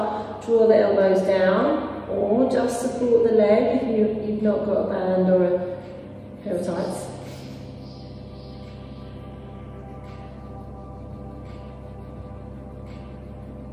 Draw the elbows down, or just support the leg if you've not got a band or a pair of tights.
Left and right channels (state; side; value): identical; both; correlation 1.00